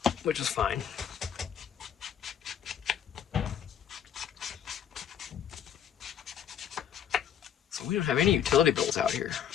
which is fine. So we don't have any utility bills out here.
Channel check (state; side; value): quieter; right; 9.1 dB